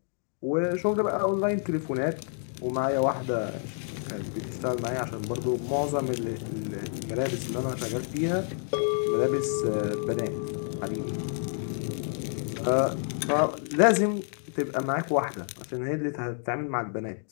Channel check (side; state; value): right; silent; 55 dB below the other